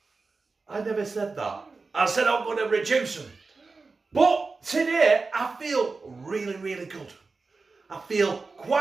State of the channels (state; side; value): quieter; left; 4.1 dB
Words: I never said that. I said I'm going to reduce them. But today I feel really good. I feel